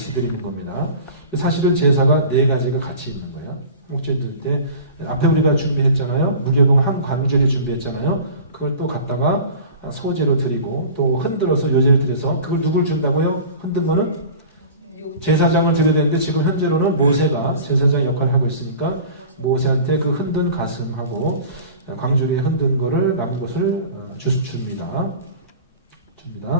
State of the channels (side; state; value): both; inverted; correlation -0.39